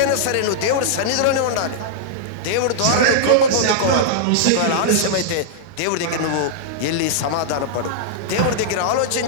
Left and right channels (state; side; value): different; both; correlation -0.02